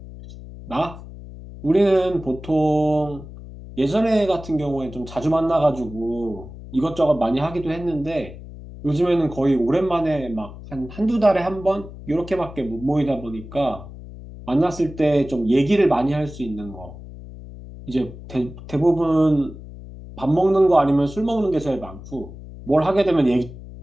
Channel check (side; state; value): left; noise; hum, 15 dB below the sound